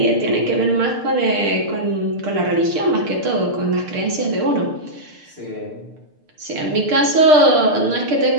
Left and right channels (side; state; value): left; late; 6.6 ms